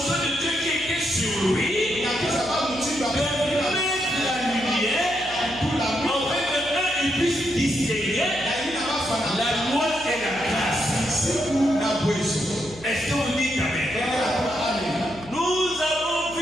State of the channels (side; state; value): left; noise; hum, 19 dB below the sound